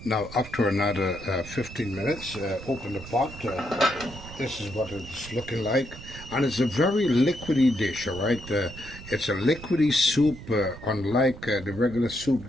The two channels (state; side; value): noise; right; rumble, 14 dB below the sound